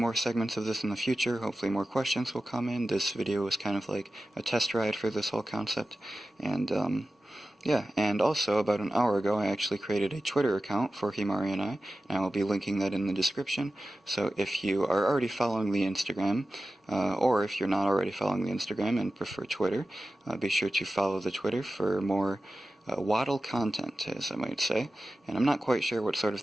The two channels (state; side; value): normal; both; correlation 0.94